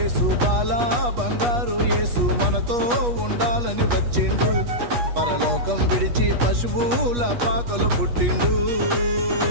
బాల బంగారు యేసు మనతో ఉండాలని వచ్చిండు. పరలోకం విడిచి పశువుల పాకలు పుట్టిండు.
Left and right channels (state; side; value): late; left; 8.3 ms